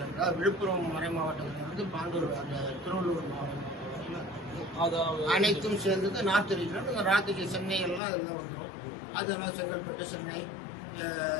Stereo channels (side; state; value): right; drops out; at 8.0 s